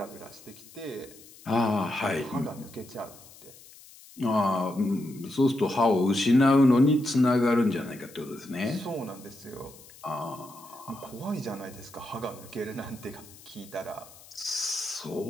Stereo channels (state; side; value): noise; left; hiss, 21 dB below the sound